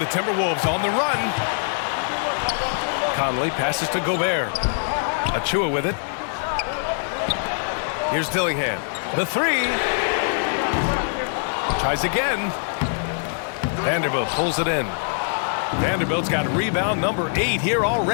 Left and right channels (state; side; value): silent; right; 55 dB below the other